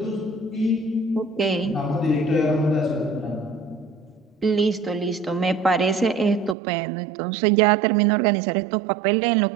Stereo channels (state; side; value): drops out; left; at 6.6 s